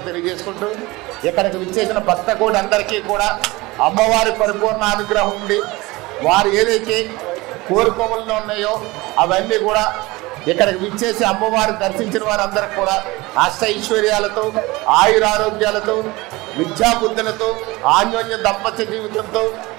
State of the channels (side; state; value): left; quieter; 21.7 dB